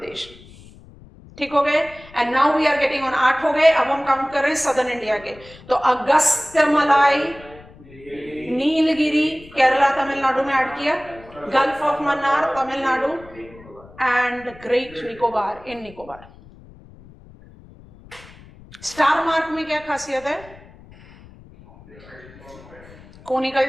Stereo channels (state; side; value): noise; left; rumble, 22 dB below the sound